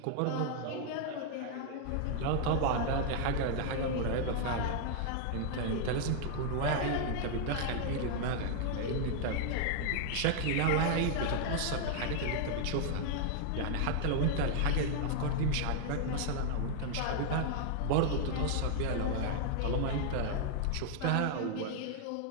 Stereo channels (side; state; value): both; different; correlation 0.00